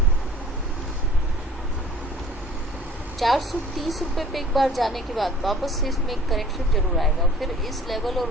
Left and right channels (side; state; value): both; normal; correlation 0.50